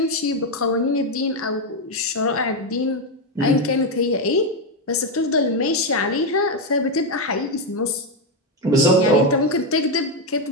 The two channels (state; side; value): normal; both; correlation 0.06